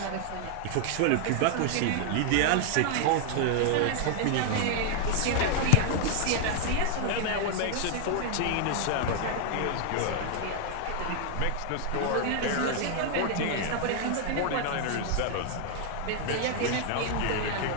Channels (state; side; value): different; both; correlation 0.00